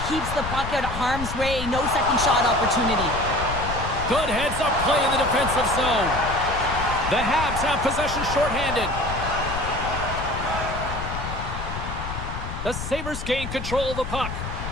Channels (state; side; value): noise; left; rumble, 6 dB below the sound